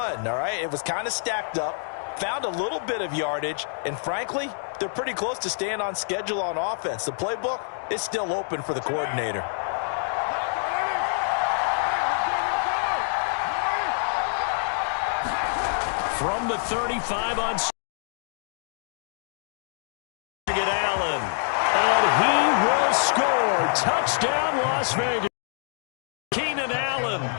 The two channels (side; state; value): right; silent; digital silence